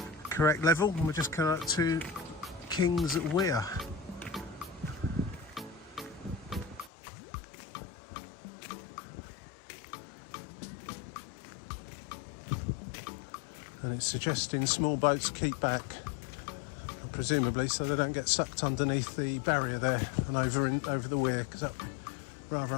correct level. And we're just coming up to King's Weir. And it's suggesting small boats keep back, presumably so they don't get sucked underneath the barrier there and over the weir, because that's a rather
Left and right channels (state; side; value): drops out; right; at 6.9 s